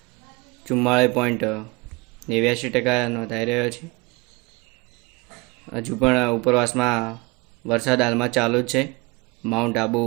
44.89% નોંધાઈ રહ્યો છે। હજુ પણ ઉપરવાસમાં વરસાદ હાલમાં ચાલુ જ છે માઉન્ટ આબુ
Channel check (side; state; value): left; quieter; 25.7 dB